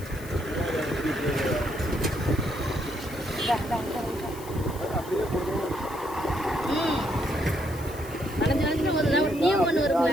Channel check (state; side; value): noise; left; hiss, 18 dB below the sound